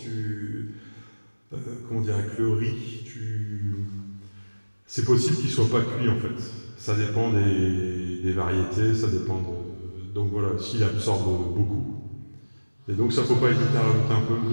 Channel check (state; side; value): inverted; both; correlation -1.00